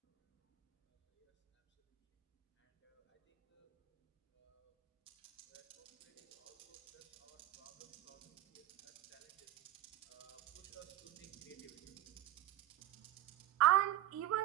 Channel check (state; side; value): quieter; left; 14.0 dB